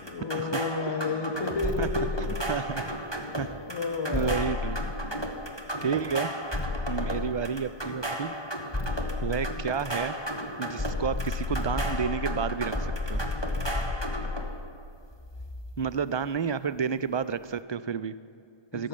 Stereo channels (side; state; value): right; late; 1.2 ms